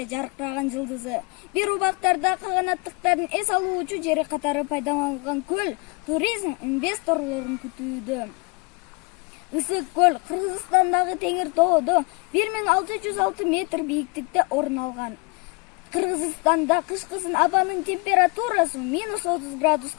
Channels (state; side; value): quieter; right; 30.5 dB